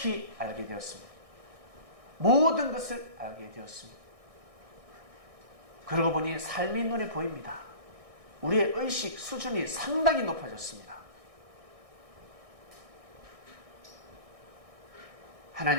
알게 되었습니다. 모든 것을 알게 되었습니다. 그러고 보니 삶이 눈에 보입니다. 우리의 의식 수준이 상당히 높아졌습니다.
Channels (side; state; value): left; late; 1.6 ms